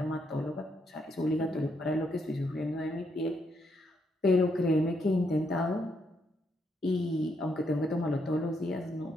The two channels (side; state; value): both; normal; correlation 0.77